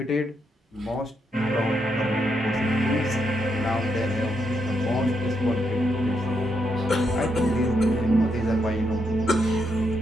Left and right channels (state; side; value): normal; both; correlation 0.80